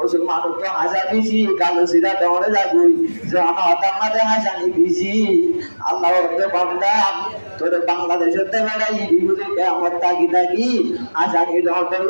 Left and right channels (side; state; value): both; inverted; correlation -1.00